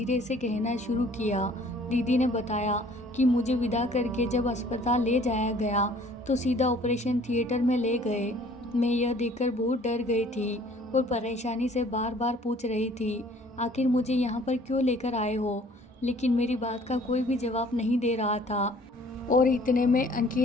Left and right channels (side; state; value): both; normal; correlation 0.55